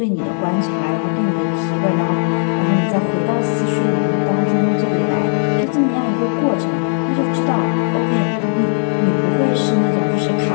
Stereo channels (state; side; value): silent; right; 61 dB below the other